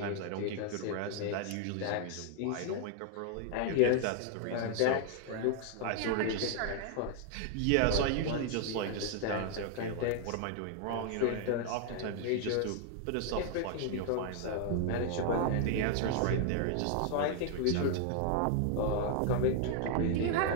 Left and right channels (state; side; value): different; both; correlation 0.00